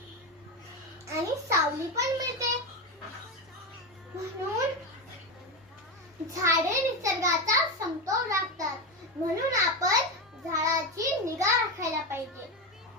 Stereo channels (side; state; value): both; normal; correlation 0.15